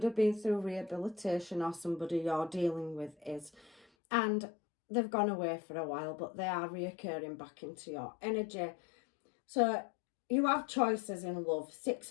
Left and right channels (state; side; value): drops out; right; at 3.9 s